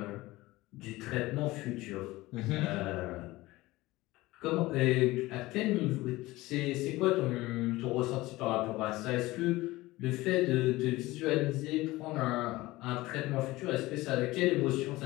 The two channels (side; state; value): right; quieter; 19.2 dB